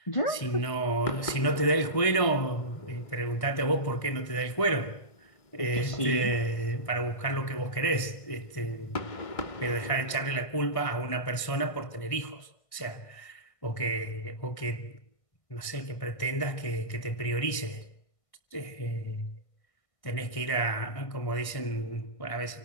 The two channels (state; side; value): late; right; 1.5 ms